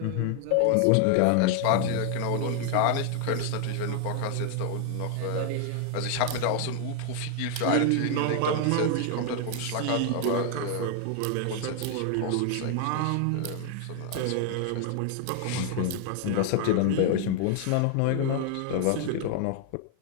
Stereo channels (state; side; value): different; both; correlation 0.00